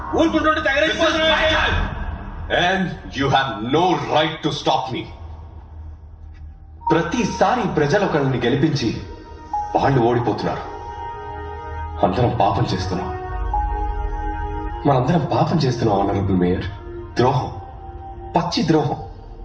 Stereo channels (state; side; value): identical; both; correlation 1.00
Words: And you have no right to stop me. ప్రతిసారి ప్రజలు ఒకరిని గెలిపించి వాళ్ళు ఓడిపోతున్నారు. అందరం పాపం చేస్తున్నాం. మనందరం పాపం చేస్తున్నాం ఆనరబుల్ మేయర్. ద్రోహం, పచ్చి ద్రోహం